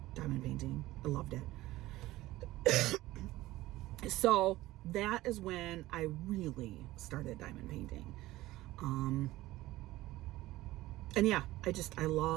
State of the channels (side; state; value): left; quieter; 17.2 dB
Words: diamond painting. I loved it. So that is when I really started diamond painting. And yeah, I